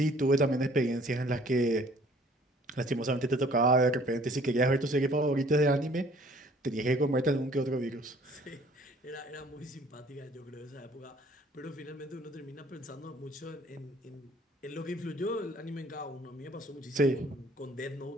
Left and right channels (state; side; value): normal; both; correlation 0.56